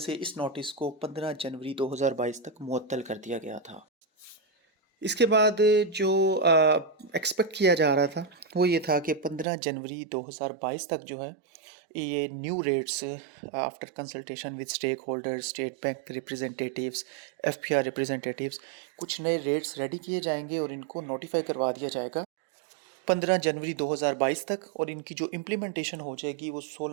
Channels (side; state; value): left; drops out; at 9.5 s